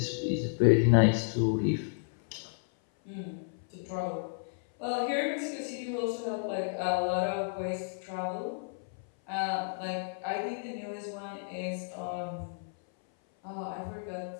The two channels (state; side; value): silent; right; 56 dB below the other